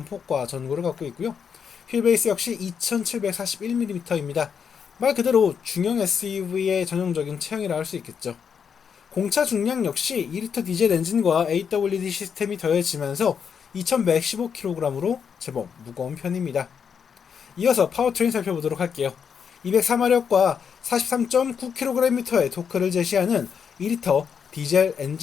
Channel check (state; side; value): quieter; right; 7.0 dB